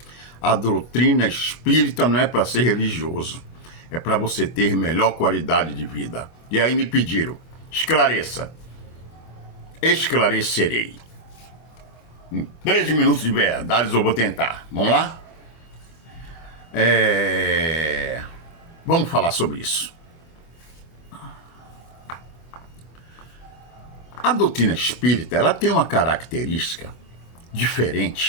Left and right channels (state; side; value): late; right; 24 ms